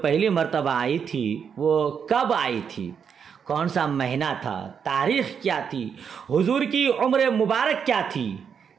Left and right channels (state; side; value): quieter; left; 7.1 dB